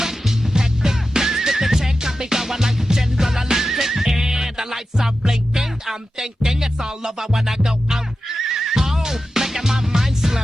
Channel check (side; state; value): both; normal; correlation 0.92